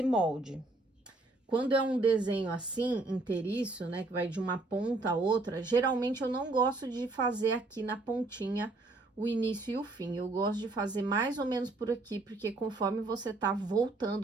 molde. Quando é um desenho assim, inteiriço, né, que vai de uma ponta a outra, geralmente eu não gosto de fazer aqui na pontinha o início e o fim. Eu gosto de fazer mais ou menos por aqui, porque conforme você tá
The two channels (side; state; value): left; quieter; 3.1 dB